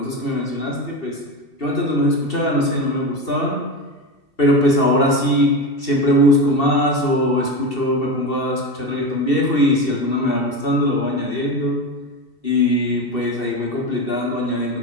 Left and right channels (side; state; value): right; late; 2.7 ms